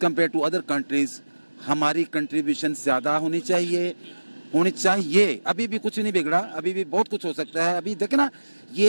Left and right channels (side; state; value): both; inverted; correlation -1.00